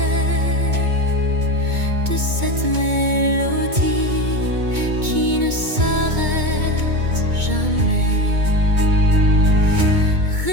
de cette mélodie qui ne s'arrête jamais.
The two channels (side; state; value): left; late; 2.2 ms